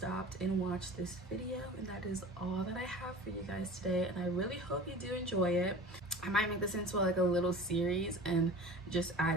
and watched this video, and that is all that I have for you guys today. And I really hope you do enjoy it. I might make this into like a little series and just add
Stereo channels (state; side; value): normal; both; correlation 0.39